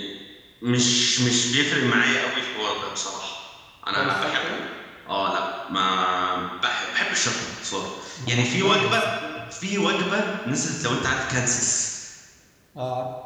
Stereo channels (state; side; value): identical; both; correlation 1.00